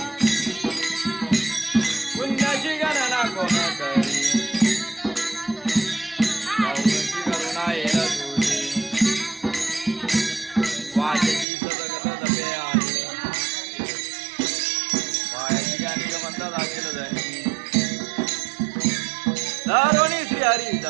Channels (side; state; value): left; drops out; at 11.5 s